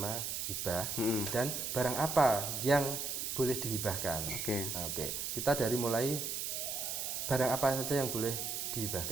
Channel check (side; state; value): right; noise; hiss, 2 dB below the sound